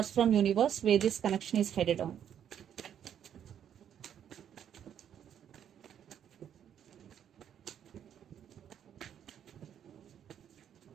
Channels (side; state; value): left; quieter; 9.3 dB